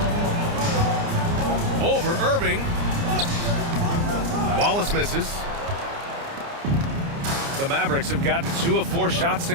Over Irving. Wallace misses. The Mavericks have gotten 2 of 4 shots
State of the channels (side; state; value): left; late; 29 ms